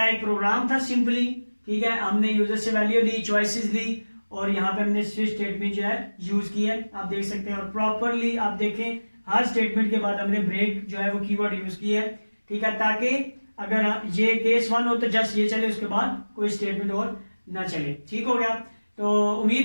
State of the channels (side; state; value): both; inverted; correlation -1.00